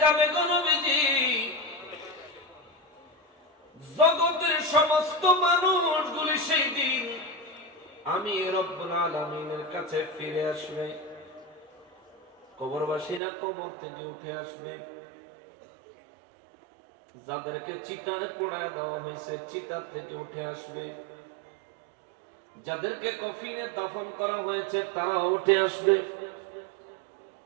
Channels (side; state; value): left; drops out; at 13.2 s